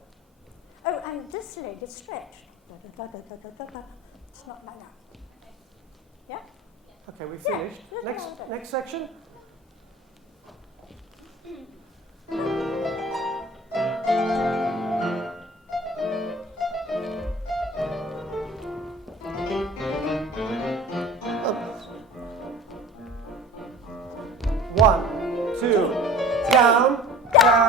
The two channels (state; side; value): normal; both; correlation 0.42